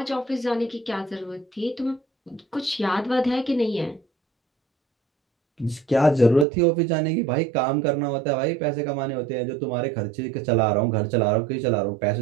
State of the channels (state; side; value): drops out; left; at 6.5 s